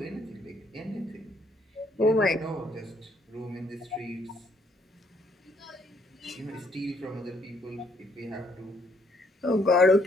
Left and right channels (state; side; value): normal; both; correlation 0.69